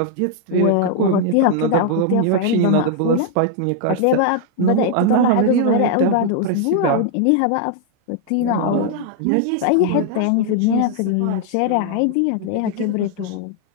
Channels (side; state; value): both; different; correlation 0.00